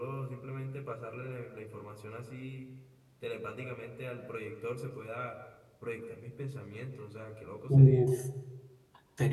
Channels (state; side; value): identical; both; correlation 1.00